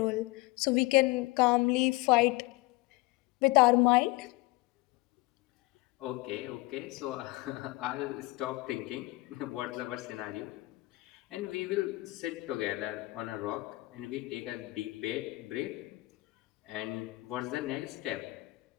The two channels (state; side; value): quieter; right; 21.4 dB